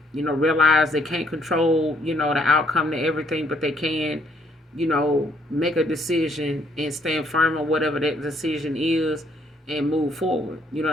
realized they can't control, the outcome to everything, but they can, make a decision and stand firm on whatever that decision is and move forward. You know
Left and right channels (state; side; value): normal; both; correlation 0.67